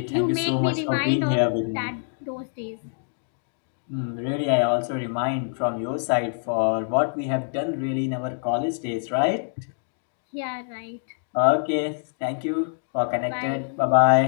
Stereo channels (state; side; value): silent; right; digital silence